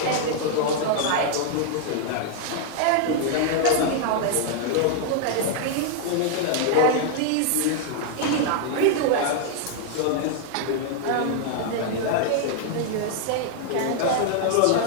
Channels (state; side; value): different; both; correlation 0.00